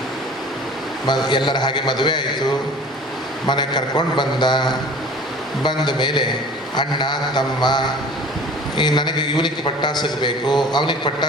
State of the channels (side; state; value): both; normal; correlation 0.44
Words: ಎಲ್ಲರ ಹಾಗೆ ಮದುವೆ ಆಯಿತು, ಮನೆಗೆ ಕರ್ಕೊಂಡು ಬಂದ ಮೇಲೆ ಅಣ್ಣ ತಮ್ಮ ನನಗೆ ಇವನಿಗೆ ಪಟ್ಟ ಸಿಗಬೇಕು, ಅವನಿಗೆ ಪಟ್ಟ